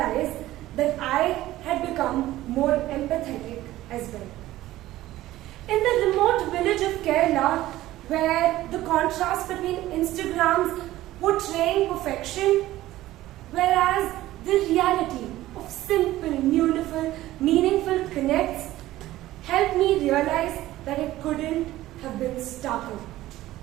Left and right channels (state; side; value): quieter; left; 15.6 dB